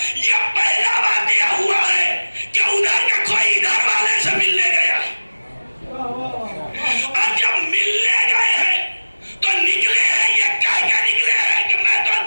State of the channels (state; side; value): inverted; both; correlation -1.00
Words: یہ پہلا واقعہ ہوا ہے کہ ادھر کا کوئی ادھر والے سے ملنے گیا. اور جب ملنے گئے ہیں تو نکلے ہیں یہ کہہ کے نکلے ہیں کہ میں تو